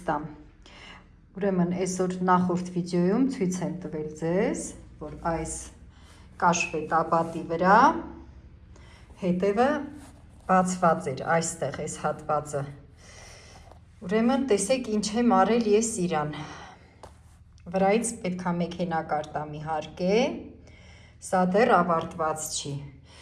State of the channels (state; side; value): identical; both; correlation 1.00